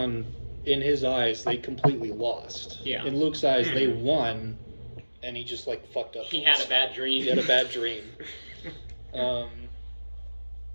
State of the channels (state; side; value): inverted; both; correlation -1.00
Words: in his eyes, they completely lost. Yeah. In Luke's eyes, they won, and he just, fucked up. He had a bad dream. He had a bad dream. God.